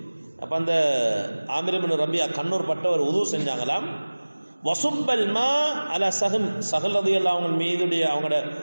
அப்போ அந்த ஆமிர் இப்னு ரபியா கண்ணூர் பட்டவர் உது செஞ்சாங்களாம். வசுப்பல் மா அல சஹல் ரலியல்லாஹு அவங்க மீதுடைய அவங்களோட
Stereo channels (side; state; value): both; inverted; correlation -1.00